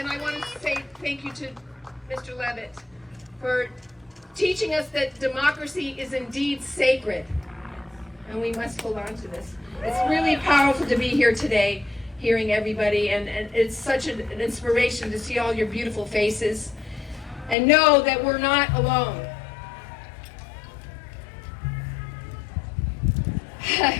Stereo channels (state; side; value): drops out; right; at 17.6 s